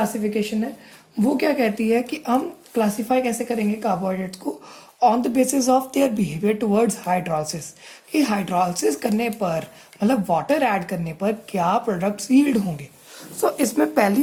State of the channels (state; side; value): identical; both; correlation 1.00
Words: है वो क्या कहती है कि हम क्लासीफाई कैसे करेंगे कार्बोहाइड्रेट्स को, on the basis of their behaviour towards hydrolysis. कि हाइड्रोलिसिस करने पर, मतलब वाटर ऐड करने पर क्या प्रोडक्ट्स यील्ड होंगे. सो इसमें पहली